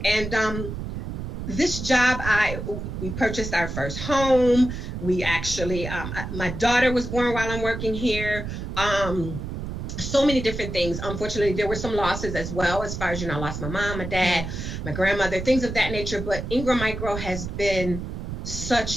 And this job, we purchased our first home. We actually, my daughter was born while I'm working here. So many different things. Unfortunately, there were some losses as well, as far as, I lost my mom, my dad, my grandmother, things of that nature. But Ingram Micro has been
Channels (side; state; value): right; noise; rumble, 6 dB below the sound